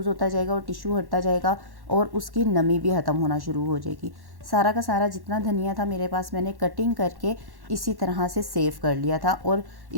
होता जाएगा और टिशू हटता जाएगा और उसकी नमी भी ख़त्म होना शुरू हो जाएगी। सारा का सारा जितना धनिया था मेरे पास मैंने कटिंग करके इसी तरह से सेव कर लिया था और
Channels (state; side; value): late; left; 1.1 ms